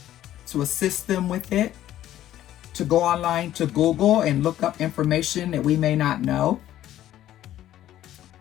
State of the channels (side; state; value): right; quieter; 12.8 dB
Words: to assist them with it, to go online to Google and look up information that we may not know,